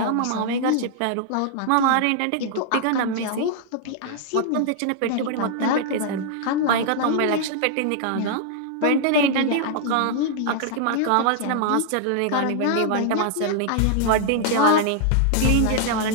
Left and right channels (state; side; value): different; both; correlation -0.01